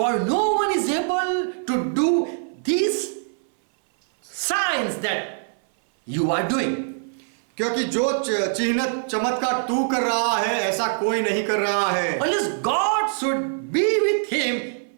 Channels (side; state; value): left; silent; 61 dB below the other